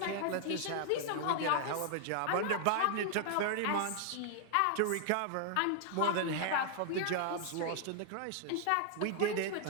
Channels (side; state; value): both; different; correlation 0.00